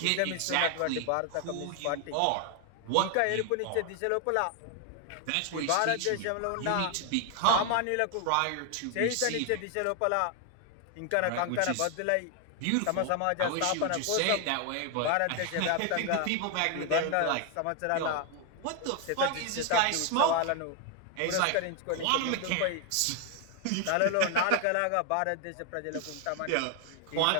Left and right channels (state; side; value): different; both; correlation 0.01